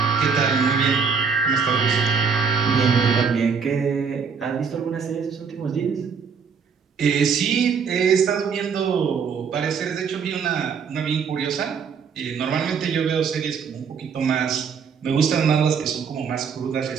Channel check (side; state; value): left; quieter; 6.1 dB